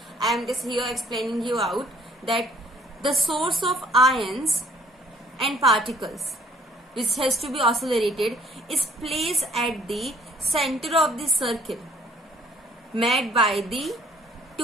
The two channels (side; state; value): both; normal; correlation 0.60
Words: I am just here explaining you out that the source of ions and particles which has to be accelerated is placed at the center of the circle made by the